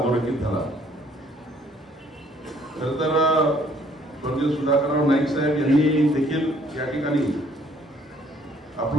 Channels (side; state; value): both; normal; correlation 0.62